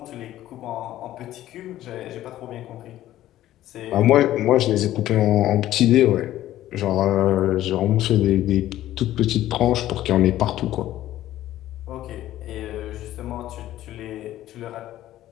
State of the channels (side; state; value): right; quieter; 13.8 dB